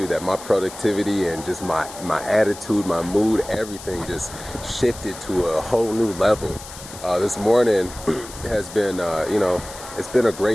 that my productivity and just my attitude, my mood, everything just shifted to a whole new level. This morning has been, it's been a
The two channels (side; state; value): left; noise; hiss, 15 dB below the sound